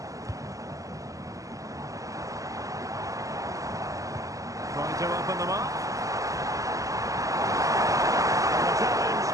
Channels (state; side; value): late; left; 0.16 ms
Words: Trying to open them up. And the challenge,